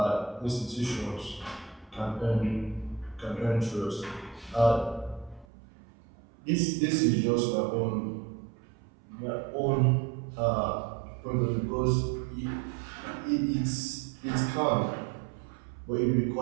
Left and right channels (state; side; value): drops out; left; at 5.5 s